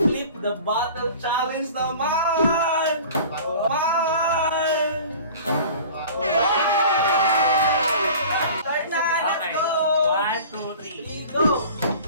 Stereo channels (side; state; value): both; inverted; correlation -0.42